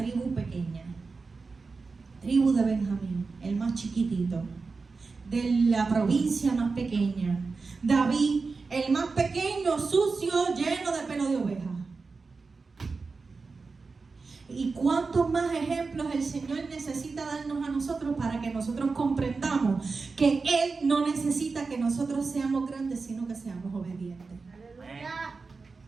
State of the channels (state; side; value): quieter; left; 4.3 dB